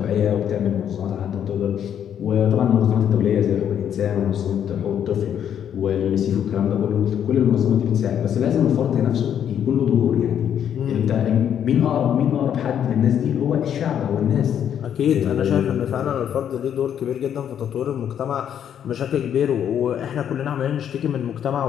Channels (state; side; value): quieter; right; 9.2 dB